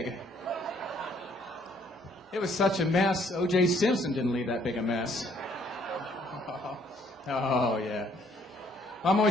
It was such a mess. O.J. Simpson didn't leave that big a mess. Oh, yeah. I'm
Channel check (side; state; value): both; normal; correlation 0.64